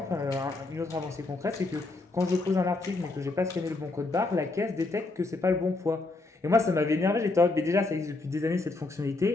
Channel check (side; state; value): right; quieter; 3.2 dB